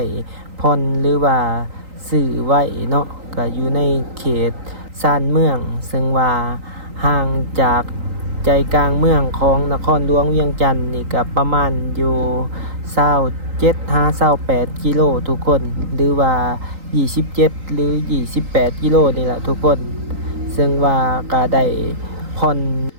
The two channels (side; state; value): left; late; 3.8 ms